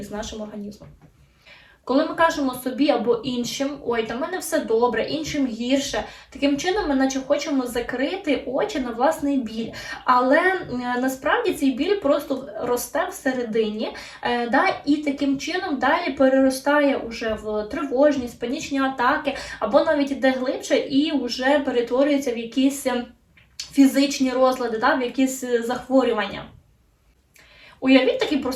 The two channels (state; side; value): identical; both; correlation 1.00